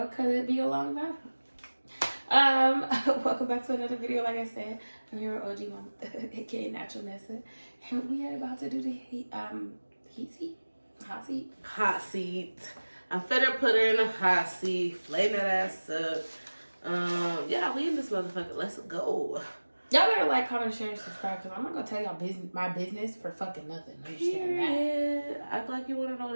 because it'd be a long time. Welcome back to another video. Like I said, I'm here with OGMamaThug, aka Natural Nessa, and we are about to do the hot seat. I'm finna put her in a hot seat, flame that ass up. Yeah, we in this motherfucker. Let's go. Y'all better like, comment, share, and subscribe, because I'm not gonna tell y'all my business for fucking nothing. Understand that? Act like you wanna know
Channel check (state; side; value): inverted; both; correlation -1.00